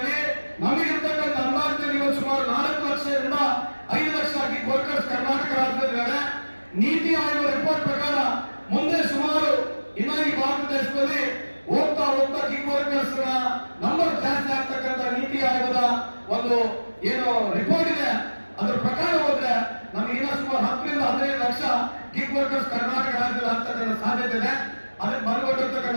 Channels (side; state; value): both; inverted; correlation -1.00